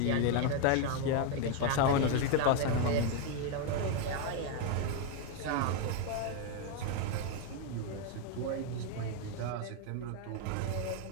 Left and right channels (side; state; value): both; different; correlation 0.01